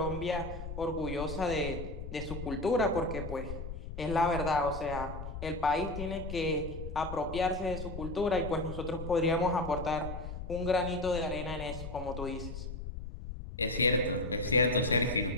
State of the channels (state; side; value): noise; left; rumble, 8 dB below the sound